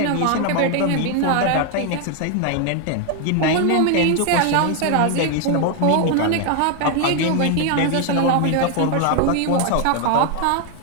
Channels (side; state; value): both; different; correlation 0.00